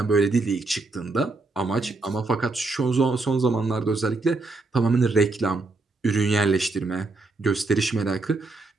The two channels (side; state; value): left; quieter; 3.5 dB